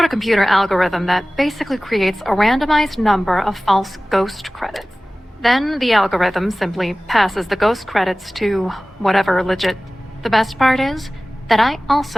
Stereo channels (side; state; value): both; normal; correlation 0.98